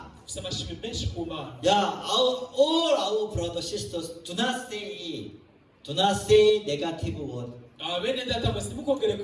Ufise amashimwe menshi ku Mana. Yeah, all our brothers sisters do not say negative word. Bene data mwese ntimukongere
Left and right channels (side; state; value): both; identical; correlation 1.00